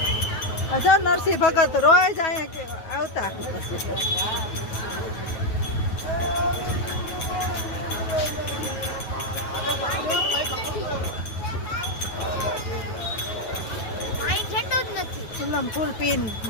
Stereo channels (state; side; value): late; right; 9.4 ms